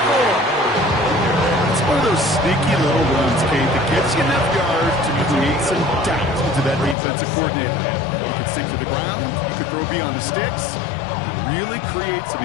4. It's one of those sneaky little runs, Kate, that gets you enough yards to create some doubt into that defensive coordinator. You could sink to the ground, you could throw beyond the sticks, really create some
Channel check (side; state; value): right; drops out; at 7.0 s